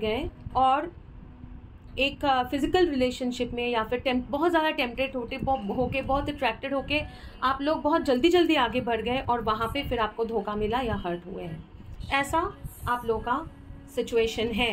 और एक फिजिकल रिलेशनशिप में या फिर बहुत ज़्यादा टेम्पटेड होके, बहुत अट्रैक्टेड होके आप लोग बहुत जल्दी आगे बढ़ गए, और वहाँ पे फिर आपको धोखा मिला या हर्ट हुए हैं। ऐसा आप लोगों का सिचुएशन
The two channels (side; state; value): both; identical; correlation 1.00